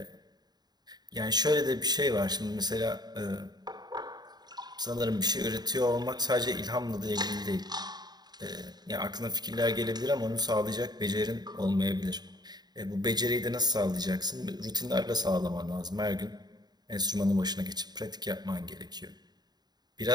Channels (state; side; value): late; left; 0.20 ms